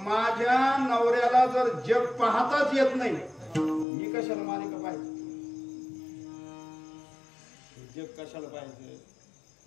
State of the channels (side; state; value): right; drops out; at 3.9 s